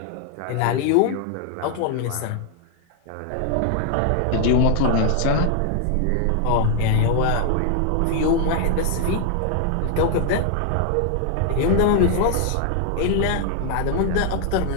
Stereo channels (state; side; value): different; both; correlation 0.00